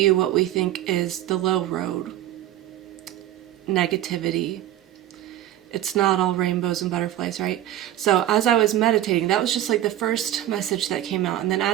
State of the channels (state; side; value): quieter; left; 12.9 dB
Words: what we think is the low road, negativity. It's not all rainbows and butterflies, right? So as I was meditating, that was just the first message that came out. And then